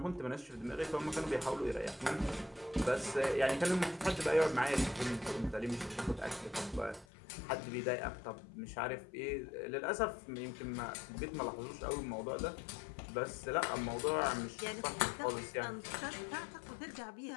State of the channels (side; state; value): right; drops out; at 7.1 s